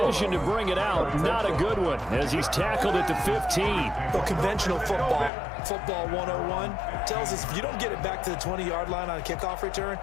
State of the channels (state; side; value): drops out; right; at 5.3 s